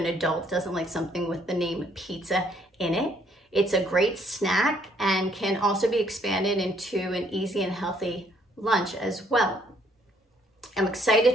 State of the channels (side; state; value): both; normal; correlation 0.66